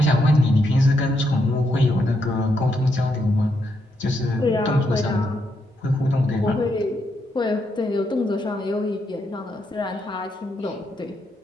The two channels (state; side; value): normal; both; correlation 0.79